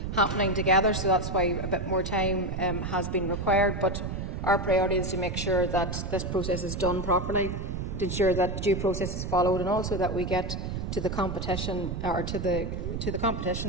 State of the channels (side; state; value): right; noise; rumble, 4 dB below the sound